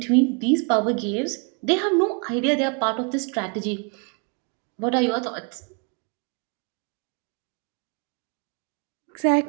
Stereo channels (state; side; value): quieter; left; 36.3 dB